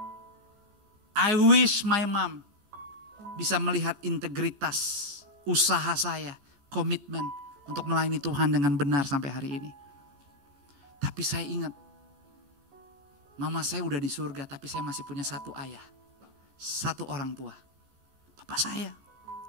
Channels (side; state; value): left; late; 14 ms